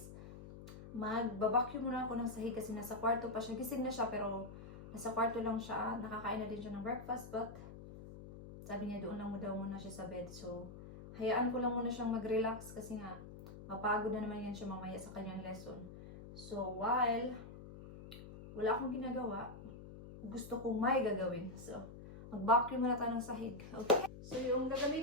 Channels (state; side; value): noise; left; hum, 14 dB below the sound